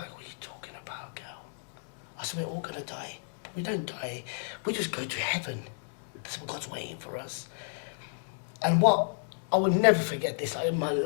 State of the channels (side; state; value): right; silent; digital silence